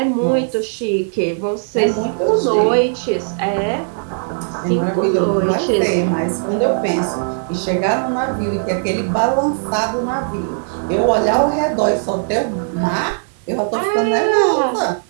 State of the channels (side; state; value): left; silent; digital silence